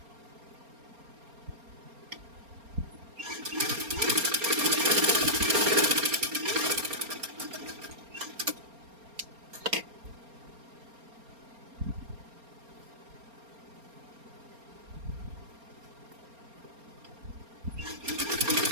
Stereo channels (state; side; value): late; left; 4.3 ms